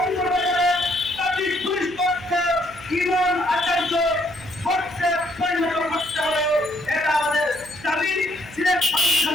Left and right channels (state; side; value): noise; right; hum, 20 dB below the sound